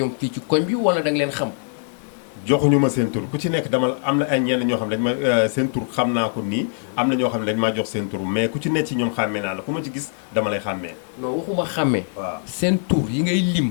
fii ci koñ bi wala da nga leen xam. joxuñu ma seen tur ku ci nekk dama am na ay ñenn ñoo xam ne dañ ma seen tur xam naa ko nii am na ñoo xam ne dañ maa jox seen tur mais ku ci nekk ci ñoom xàmmee naa la ku ma ci gis dama lay xàmmee. non waxuma xàmmee. waaw seen tur yi ngay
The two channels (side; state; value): right; silent; 64 dB below the other